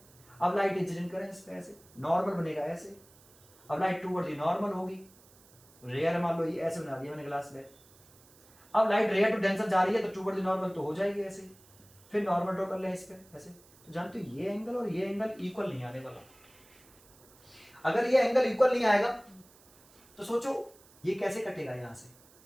अब लाइट इंसिडेंट करें इस पे, ऐसे नॉर्मल बनेगा ऐसे, अब लाइट टूवर्ड दी नॉर्मल होगी, रेयर मान लो ये ऐसे बना दिया मैंने ग्लास स्लैब। अब लाइट रेयर टू डेंसर जा रही है तो टूवर्ड दी नॉर्मल तो हो जाएगी ऐसे, फिर नॉर्मल ड्रॉ कर ले इस पे ऐसे। तो जानते हो ये एंगल और ये एंगल इक्वल नहीं आने वाला। अगर ये एंगल इक्वल नहीं आएगा तो सोचो ये कैसे कटेगा यहां से,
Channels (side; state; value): right; noise; hiss, 27 dB below the sound